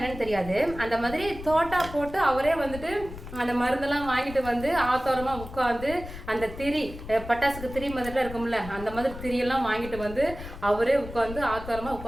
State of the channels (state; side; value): noise; left; rumble, 12 dB below the sound